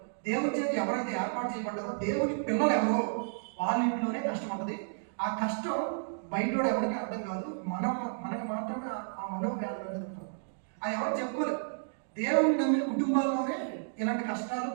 దేవుని చేత ఎవరైతే ఏర్పాటు చేయబడ్డారో, దేవుని పిల్లలు ఎవరో వాళ్ళ ఇంట్లోనే కష్టం ఉంటుంది. ఆ కష్టం బయటోడు ఎవరికి అర్థం కాదు, మనకి మాత్రమే ఆ మనోవ్యాధులు అనేది ఉంటుంది. అది ఎవరు చెప్పుకోలేదు. దేవుడు నమ్మిన కుటుంబాల్లోనే ఇలాంటి కష్టాలు,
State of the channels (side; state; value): left; silent; digital silence